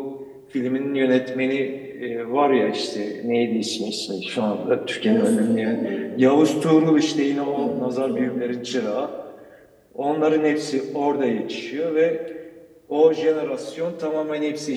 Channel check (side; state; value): both; identical; correlation 1.00